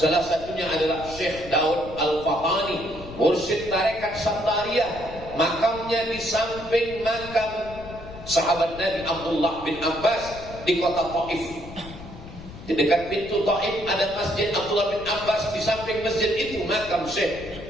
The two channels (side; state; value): left; noise; rumble, 14 dB below the sound